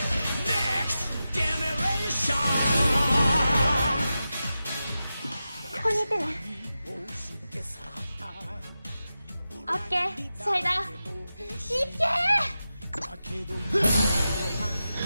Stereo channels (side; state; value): both; inverted; correlation -0.92